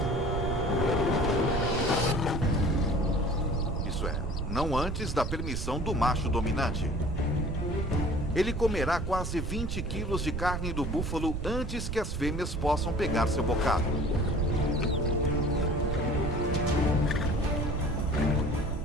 Isso é, não antes da permissão do macho dominante. Ele comerá quase 20 quilos de carne do búfalo antes que as fêmeas possam pegar seu bocado.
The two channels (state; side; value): noise; right; rumble, 3 dB below the sound